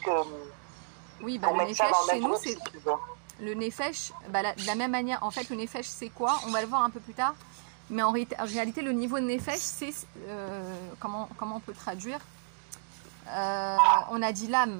Oui, pour le mettre ça nefesh, dans le chez même nous, groupe, c'est... si tu veux. Le nefesh, de la même manière, en fait, le nefesh, c'est quoi? On va le voir un peu plus tard. Mais en réalité, le niveau de nefesh, c'est... comment on peut traduire? On a dit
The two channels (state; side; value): silent; left; digital silence